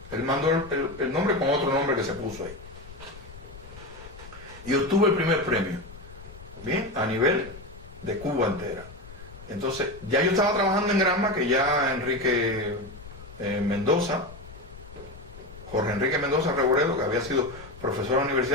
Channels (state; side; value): noise; left; rumble, 17 dB below the sound